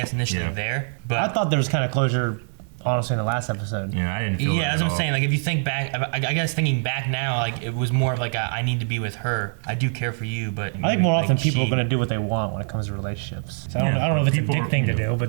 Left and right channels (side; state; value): left; silent; digital silence